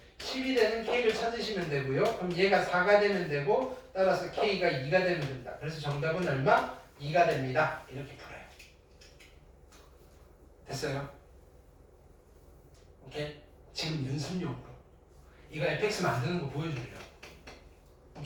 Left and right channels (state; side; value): identical; both; correlation 1.00